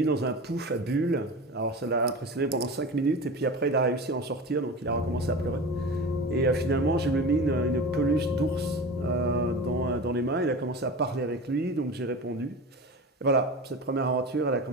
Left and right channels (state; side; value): normal; both; correlation 0.31